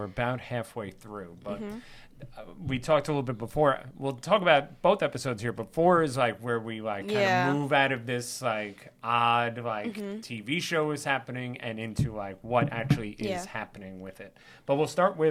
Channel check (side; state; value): both; identical; correlation 1.00